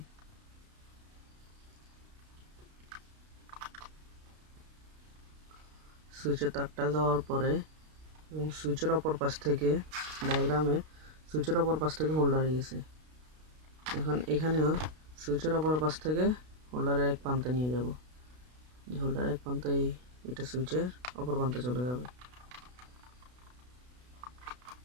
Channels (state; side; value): late; left; 32 ms